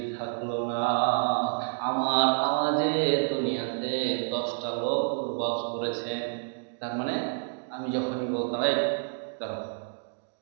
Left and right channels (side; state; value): left; silent; digital silence